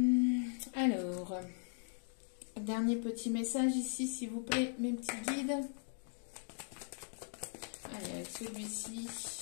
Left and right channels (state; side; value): silent; right; 52 dB below the other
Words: Alors, dernier petit message ici, s'il vous plaît, mes petits guides. Allez, avec celui-ci.